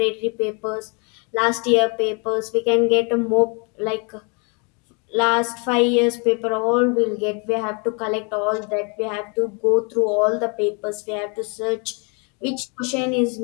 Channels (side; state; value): right; quieter; 34.3 dB